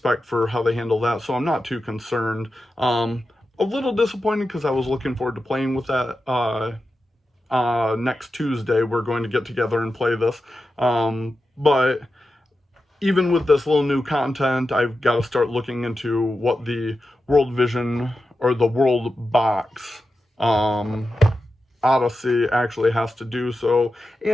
for how they handle that, so I'm not too concerned. A little disappointed because I was looking forward to playing with that. Next Tuesday we're going to get together and play this, but even with this little new content, I've got to start looking into what the World Vision or the World Box Odyssey actually has to do. So,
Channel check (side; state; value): both; normal; correlation 0.91